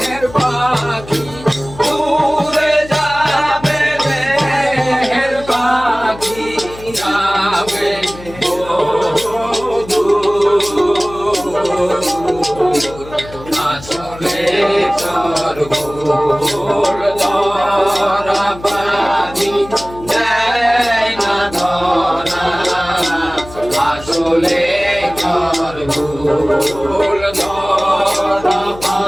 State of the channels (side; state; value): left; noise; hum, 16 dB below the sound